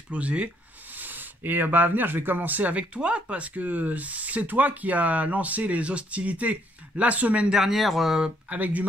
Et à venir, je vais commencer avec toi, parce que c'est toi qui as lancé les hostilités la semaine dernière avec du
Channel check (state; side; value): normal; both; correlation 0.69